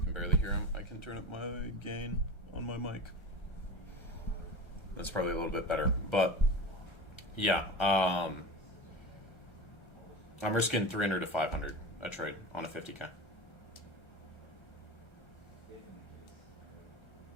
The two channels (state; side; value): late; right; 1.3 ms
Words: can barely hear him? I can turn up my gain on my mic. That's probably a little bit better, but yeah, I'm risking 300 to 500 a trade on a 50K.